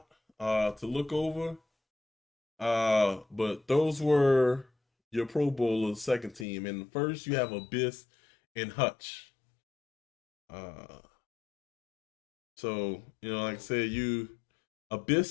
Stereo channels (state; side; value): drops out; right; at 6.5 s